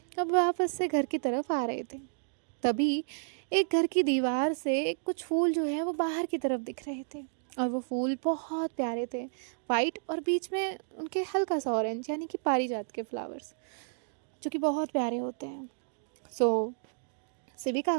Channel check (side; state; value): left; silent; digital silence